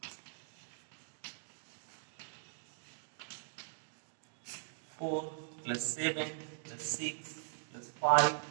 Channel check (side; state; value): left; silent; digital silence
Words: Four plus 7 plus 6 plus 5